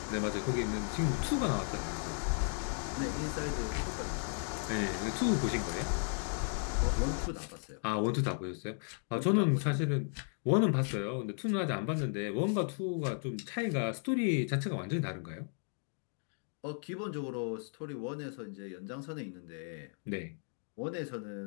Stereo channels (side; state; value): right; silent; 54 dB below the other